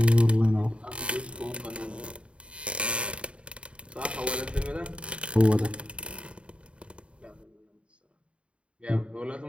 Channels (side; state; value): left; late; 0.059 ms